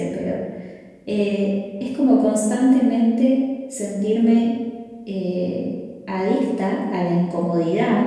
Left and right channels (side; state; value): both; identical; correlation 1.00